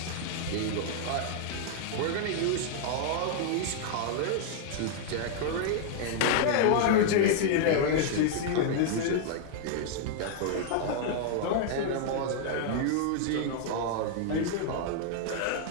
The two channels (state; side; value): different; both; correlation 0.00